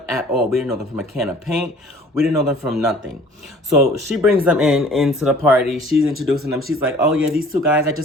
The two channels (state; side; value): normal; both; correlation 0.51